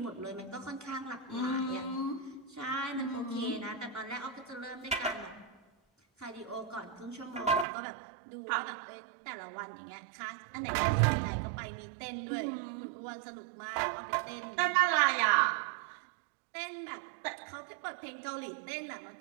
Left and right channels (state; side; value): drops out; left; at 7.7 s